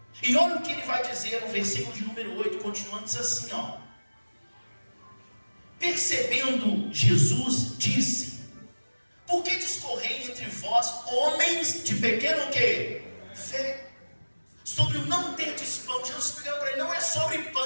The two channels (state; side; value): inverted; both; correlation -1.00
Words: E olha o que ele vai dizer no versículo de número 8, continuando, diz assim, ó. Percebendo Jesus, disse: por que discorrei entre vós, homens de pequeno quê? Fé. Sobre o não ter de pão. Jesus explicando para ele, não é sobre